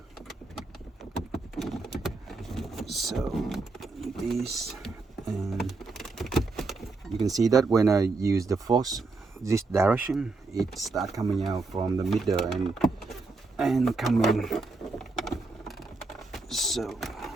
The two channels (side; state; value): left; quieter; 3.7 dB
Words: So this, and you can see that when I use the force this direction, it starts coming out from the middle and coming. So